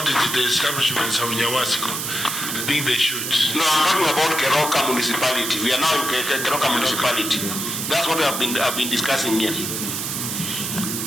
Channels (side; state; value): right; noise; hiss, 3 dB below the sound